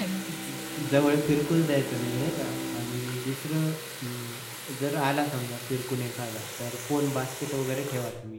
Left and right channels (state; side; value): identical; both; correlation 1.00